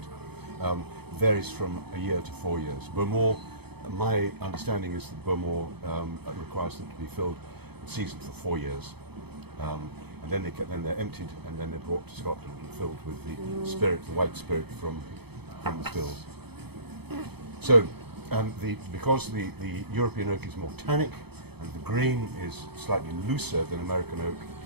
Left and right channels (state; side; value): late; left; 0.98 ms